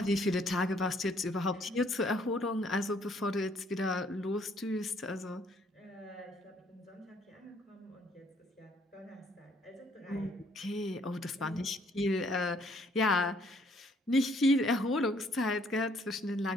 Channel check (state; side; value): normal; both; correlation 0.64